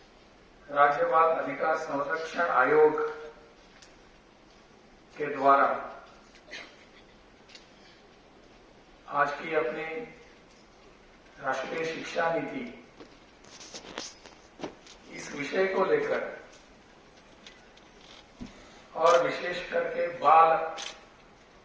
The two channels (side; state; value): both; identical; correlation 1.00